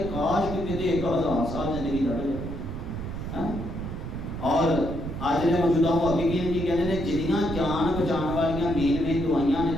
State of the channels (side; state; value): right; noise; rumble, 7 dB below the sound